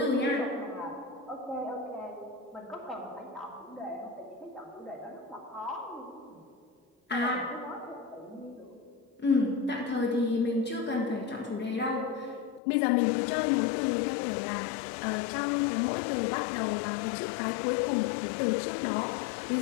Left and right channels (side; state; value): right; drops out; at 12.6 s